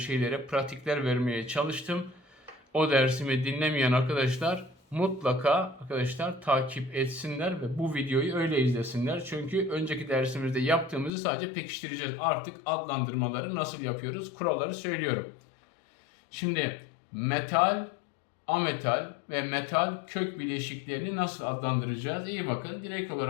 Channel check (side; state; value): right; drops out; at 11.1 s